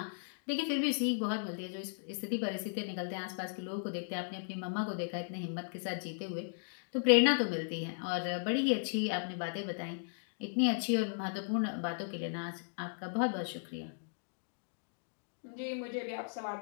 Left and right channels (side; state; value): right; silent; digital silence